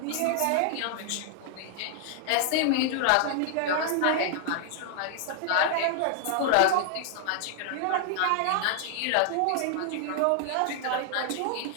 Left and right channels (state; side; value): different; both; correlation 0.00